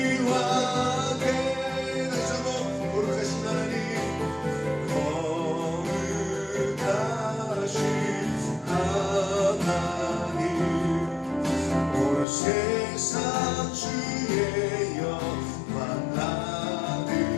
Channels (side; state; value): right; drops out; at 12.2 s